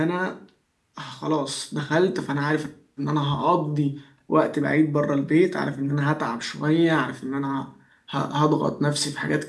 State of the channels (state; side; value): identical; both; correlation 1.00